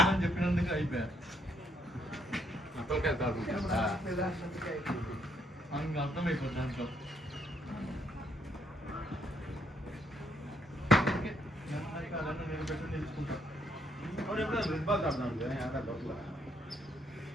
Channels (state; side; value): normal; both; correlation 0.71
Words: చెప్పినందుకు అయిపోయా. అసలుకే కాదు. అర్థమైపోతుంది దాంట్లో.